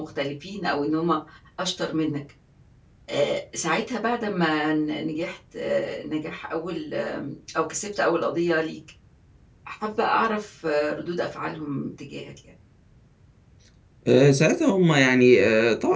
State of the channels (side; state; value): both; identical; correlation 1.00